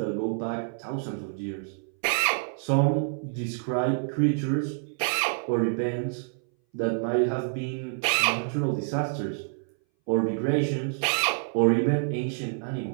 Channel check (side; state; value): left; silent; 59 dB below the other